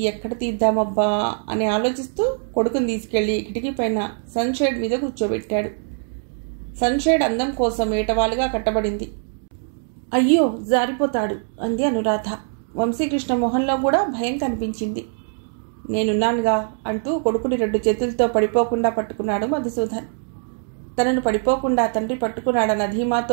ఎక్కడ తీద్దామబ్బా అని ఆలోచిస్తూ కొడుకుని తీసుకెళ్లి కిటికీ పైన సన్షేడ్ మీద కూర్చోబెట్టాడు. సన్షేడ్ అందం కోసం ఏటవాలుగా కట్టబడింది. అయ్యో జారిపోతాడు అంది అనురాధ. వంశీకృష్ణ మొహంలో కూడా భయం కనిపించింది. నేనున్నానుగా అంటూ కొడుకుని 2 చేతులతో పడిపోకుండా పట్టుకున్నాడు మధుసూదన్. తనను పడిపోకుండా తండ్రి పట్టుకున్నాడన్న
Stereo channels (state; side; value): silent; left; 61 dB below the other